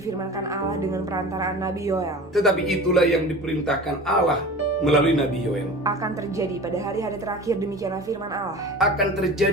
Allah dengan perantaraan Nabi Yoel. Tetapi itulah yang diperintahkan Allah melalui Nabi Yoel. Akan terjadi pada hari-hari terakhir, demikianlah firman Allah, Akan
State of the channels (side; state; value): both; normal; correlation 0.36